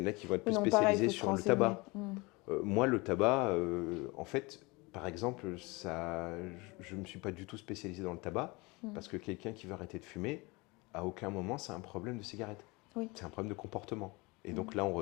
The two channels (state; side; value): quieter; right; 25.2 dB